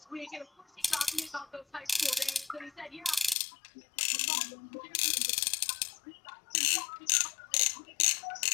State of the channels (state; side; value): drops out; right; at 3.4 s